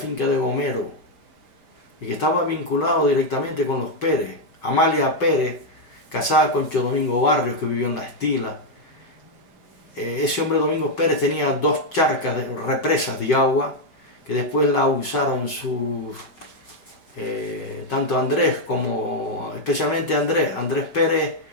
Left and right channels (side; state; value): right; late; 5.4 ms